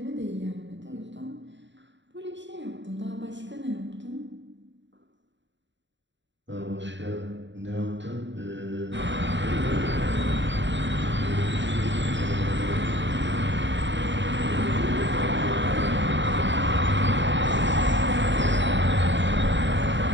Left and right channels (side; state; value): left; late; 0.53 ms